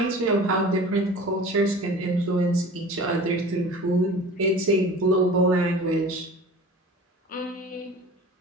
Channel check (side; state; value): both; normal; correlation 0.39